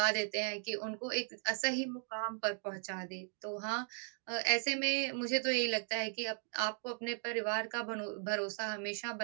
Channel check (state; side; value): silent; left; 53 dB below the other